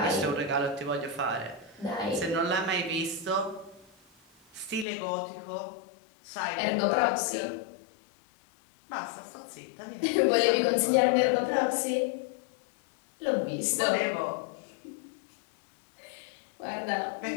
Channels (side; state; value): right; drops out; at 4.9 s